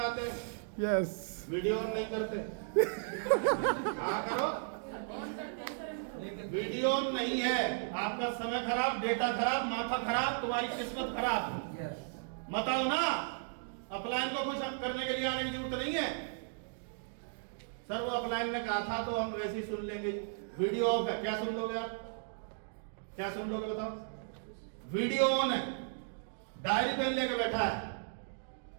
आते हैं? यस वीडियो ऑन नहीं करते? हाँ करो। वीडियो ऑन नहीं है, आपका समय खराब, डेटा खराब, माथा खराब, तुम्हारी किस्मत खराब। मत आओ ना, अपलाइन को कुछ करने के लिए आने की जरूरत नहीं है। सर वो अपलाइन ने कहा था तो हम वैसे ही सुन लेंगे। वीडियो ऑफ है, क्या सुन लोगे आप? क्या सुन लोगे बताओ? वीडियो ऑन है, डायरी पेन लेकर बैठा है,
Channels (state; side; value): silent; left; digital silence